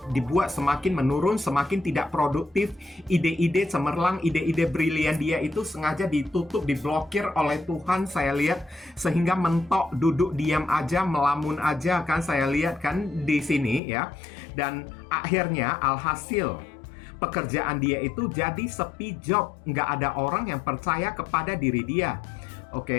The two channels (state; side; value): drops out; right; at 13.8 s